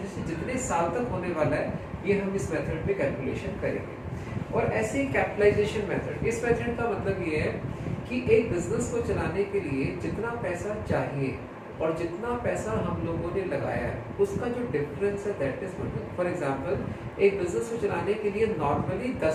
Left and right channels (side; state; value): both; identical; correlation 1.00